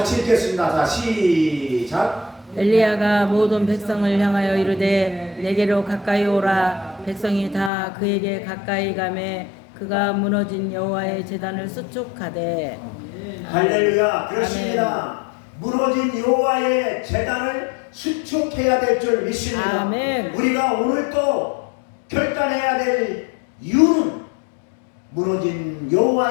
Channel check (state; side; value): drops out; right; at 7.7 s